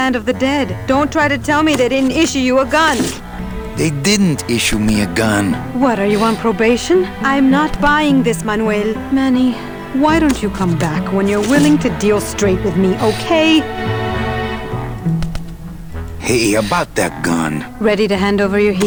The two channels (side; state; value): both; identical; correlation 1.00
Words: of the dead. Don't try to tell me they didn't issue you a gun. They didn't issue me a gun. What, are you on probation? I'm not buying this, Manuel. Manny, why don't you come back when you're willing to deal straight with me, okay? Hey, about that gun. Ready to hand over your